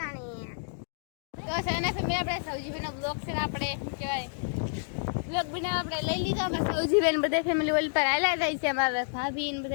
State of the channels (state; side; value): silent; right; digital silence